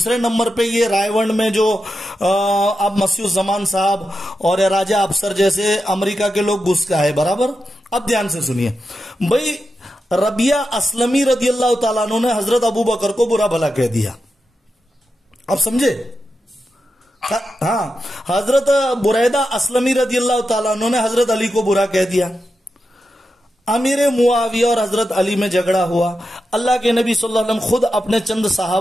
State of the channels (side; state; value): both; normal; correlation 0.89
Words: نمبر پہ یہ رائے ونڈ میں جو اب مسیح الزمان صاحب اور راجہ افسر جیسے امریکہ کے لوگ گھس کا ہے برابر. اب دھیان سے سنیے بھائی، ربیہ اسلمی رضی اللہ تعالیٰ عنہ نے حضرت ابو بکر کو برا بھلا کہہ دیا. اب سمجھے؟ ہاں، حضرت بریدہ اسلمی رضی اللہ تعالیٰ عنہ نے حضرت علی کو برا کہہ دیا. امیر معاویہ اور حضرت علی میں جھگڑا ہوا. اللہ کے نبی صلی اللہ علیہ وسلم خود اپنے چند